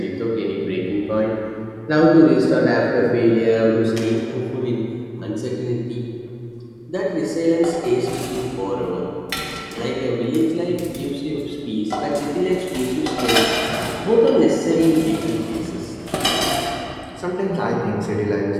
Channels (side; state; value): both; identical; correlation 1.00